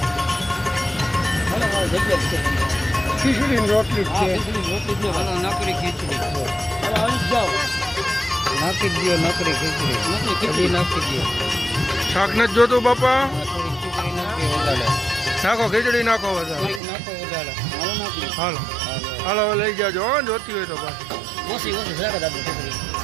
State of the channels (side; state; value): left; drops out; at 16.8 s